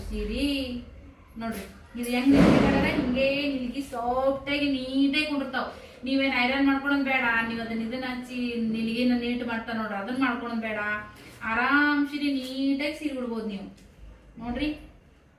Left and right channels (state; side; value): identical; both; correlation 1.00